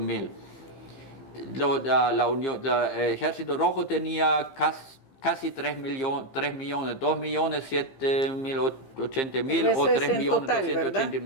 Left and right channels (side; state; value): right; late; 15 ms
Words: El Ejército Rojo tenía casi 3 millones, 2.780.000 o